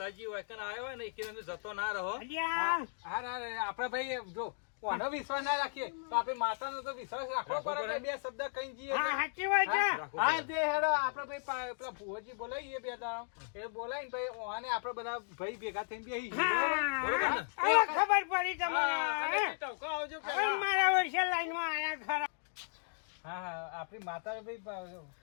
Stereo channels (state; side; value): silent; right; digital silence